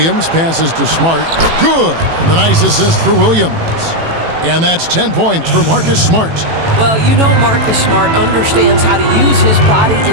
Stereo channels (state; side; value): late; left; 18 ms